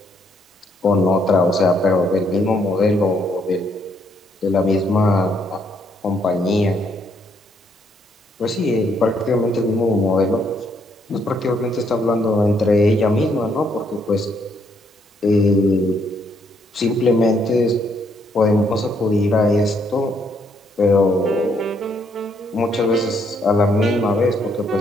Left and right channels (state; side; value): normal; both; correlation 0.72